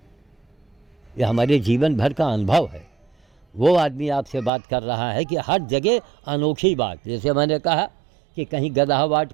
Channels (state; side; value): drops out; left; at 4.5 s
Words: यह हमारे जीवन भर का अनुभव है। वो आदमी आपसे बात कर रहा है कि हर जगह अनोखी बात, जैसे मैंने कहा कि कहीं गदहावाट